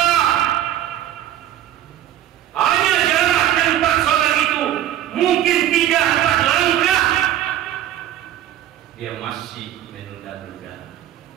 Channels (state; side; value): quieter; left; 11.9 dB